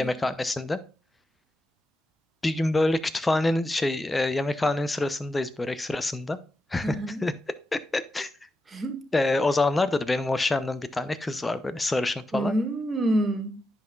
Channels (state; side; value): normal; both; correlation 0.89